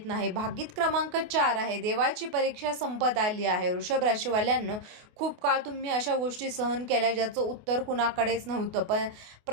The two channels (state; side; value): late; left; 28 ms